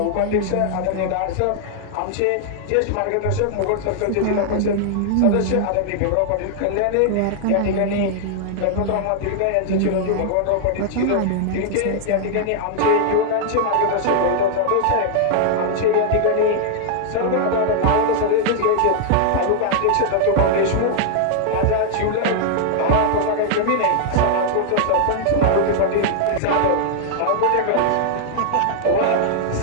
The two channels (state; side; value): different; both; correlation 0.00